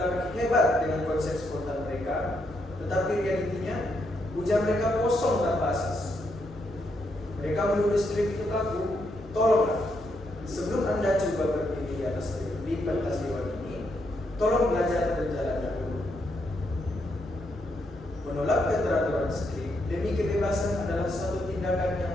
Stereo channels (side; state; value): both; normal; correlation 0.78